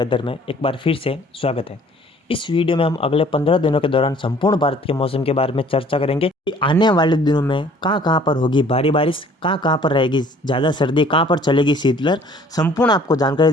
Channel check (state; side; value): normal; both; correlation 0.55